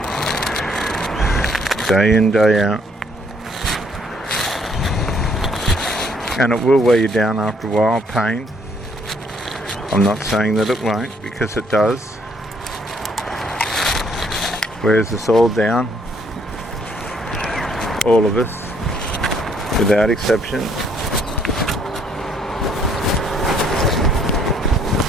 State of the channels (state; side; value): normal; both; correlation 0.66